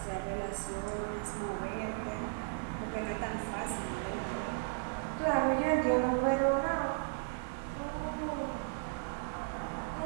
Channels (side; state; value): left; silent; digital silence